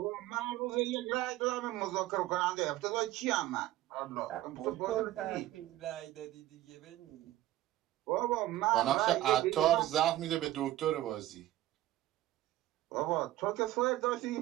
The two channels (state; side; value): quieter; left; 14.8 dB